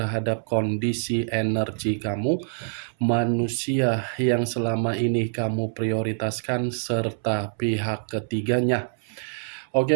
kondisi energi kamu, manusia yang selama ini kamu prioritaskan, serta pihak ketiganya.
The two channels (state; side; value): silent; left; 62 dB below the other